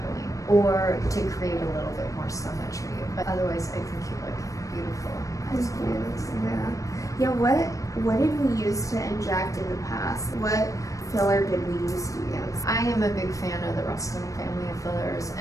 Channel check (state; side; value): late; right; 0.16 ms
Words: or to create a little bit more symmetry. But otherwise, I think you look beautiful. Yeah. What did we use to inject in the past? What filler did we used to use? I am a big fan of the Restylane family of fillers